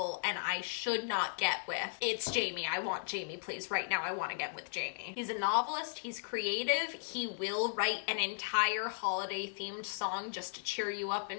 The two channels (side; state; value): right; silent; digital silence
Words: and I should not get with, it's Jamie. I want Jamie, please. Right now, I want to get with Jamie. He's a novelist. He's creative. He will write an entire holiday-themed song just to cheer you up